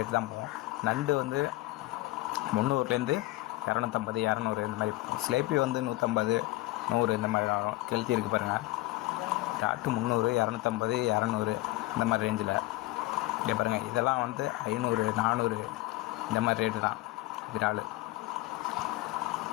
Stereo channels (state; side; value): quieter; right; 18.8 dB